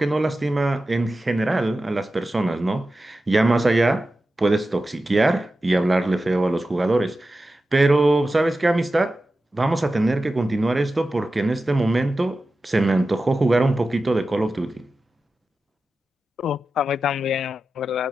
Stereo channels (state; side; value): normal; both; correlation 0.93